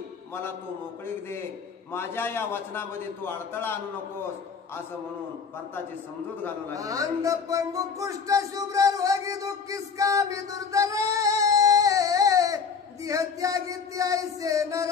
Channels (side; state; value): right; quieter; 5.9 dB